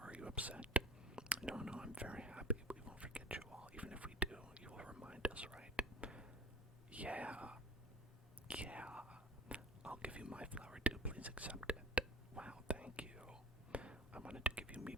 Are you upset? No, I'm very happy. We won't forget you all. Even if we do, you will remind us, right? Yeah. I'll give you my flower too. Please accept it. Wow, thank you. I wanted to give you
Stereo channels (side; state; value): both; normal; correlation 0.42